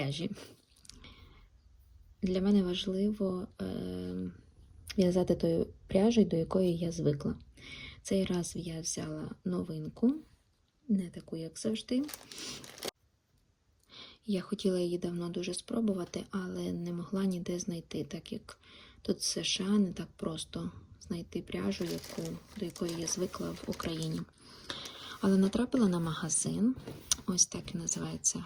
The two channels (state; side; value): identical; both; correlation 1.00